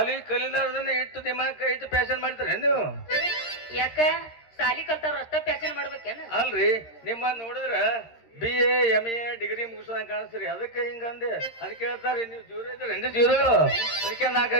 ಕಲಿಲಾರ್ದನ್ನ ಇಟ್ಟು ದಿಮಾಕ ಇಟ್ಟು ಪ್ಯಾಶನ್ ಮಾಡ್ತಾರ ನೀವು ಯಾಕ ಸಾಲಿ ಕಲ್ತಾರ ಅಷ್ಟ ಪ್ಯಾಶನ್ ಮಾಡ್ಬೇಕೇನ ಅಲ್ರಿ ನಿಮ್ಮ ನೋಡಿದ್ರ BA MA ಡಿಗ್ರಿ ಮುಗಿಸೋದಂಗ ಕಾಣಿಸ್ರಿ ಅದಕ್ಕೆ ಹಿಂಗಂದೆ ಅದಕ್ಕೆ ಹೇಳ್ತಾರಿ ನೀವು ಜೀರೋ ಇದ್ರೆ 2 ಜೀರೋ ಅದಕ್ಕೆ 4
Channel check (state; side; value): late; right; 13 ms